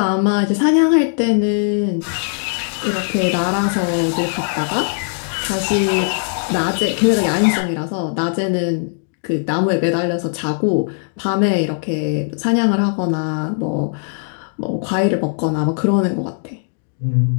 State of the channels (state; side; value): silent; right; digital silence